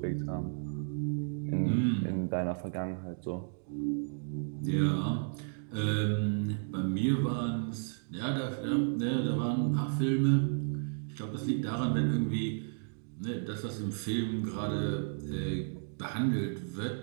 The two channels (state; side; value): silent; left; digital silence